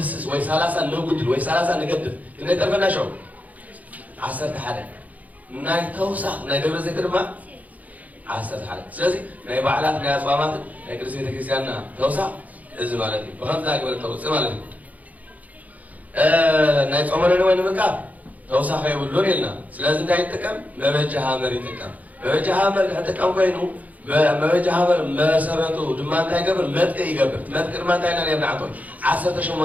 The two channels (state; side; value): late; left; 0.076 ms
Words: وي 3 نقدر وي 3 نقدر كنا يترفنا شو 10 حدا ناي توسع ناي دبر زيت رما 10 حدا سلازي ناي بعلات ناي أصوامات ناي كرسي تكريسيانا توسع إذا مالتي بخمس ذاك ولا توسع مالتي ناي صومنا نوين مكاب توسع خير ولون يلنا سلازي ناي تكم ما بيجها مري تكم ما بيجها مري حتى كم كينو ما بيجها مري ما سبته دمان تاي قبل متك يقبل متك ما تاي ناني بنعطون 10